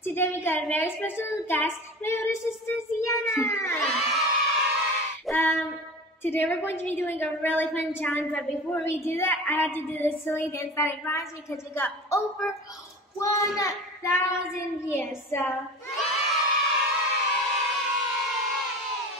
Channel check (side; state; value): both; normal; correlation 0.35